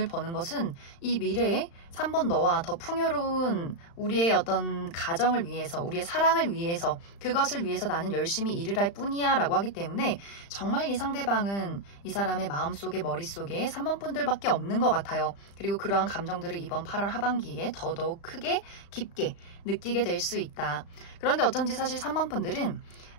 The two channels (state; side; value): late; right; 35 ms